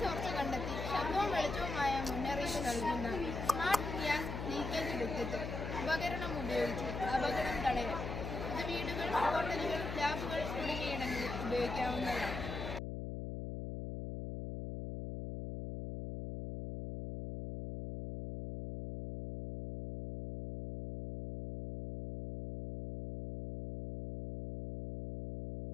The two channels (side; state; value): left; noise; hum, 5 dB below the sound